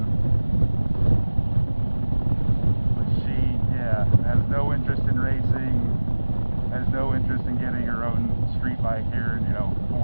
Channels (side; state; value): both; inverted; correlation -1.00